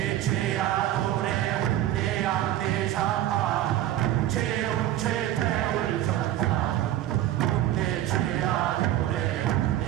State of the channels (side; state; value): left; quieter; 13.1 dB